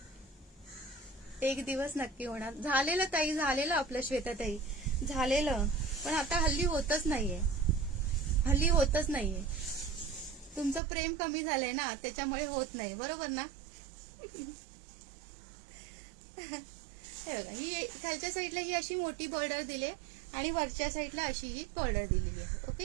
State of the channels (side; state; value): left; drops out; at 10.8 s